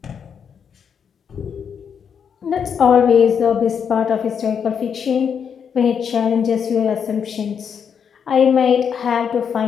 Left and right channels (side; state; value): right; quieter; 7.2 dB